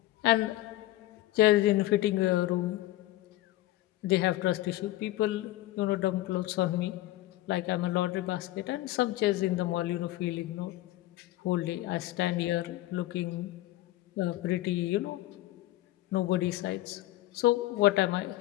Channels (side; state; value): right; quieter; 16.1 dB